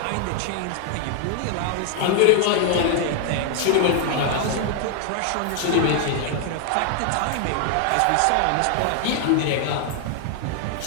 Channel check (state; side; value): different; both; correlation 0.00